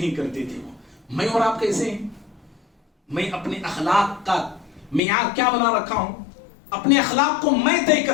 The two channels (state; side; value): drops out; right; at 5.0 s